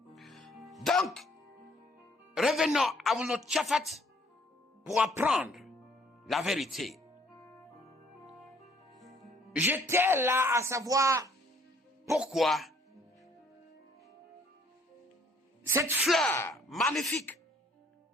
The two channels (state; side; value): normal; both; correlation 0.62